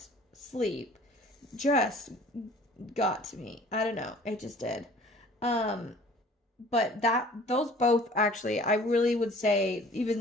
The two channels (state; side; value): normal; both; correlation 0.50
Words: sleep just got to me. I don't know. It just did. But those both actually, I really would say